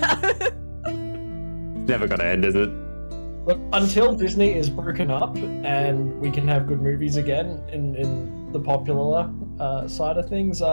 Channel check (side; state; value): both; inverted; correlation -1.00